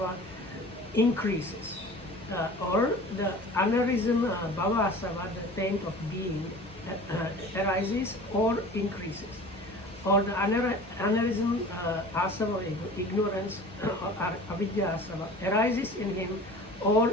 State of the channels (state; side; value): normal; both; correlation 0.41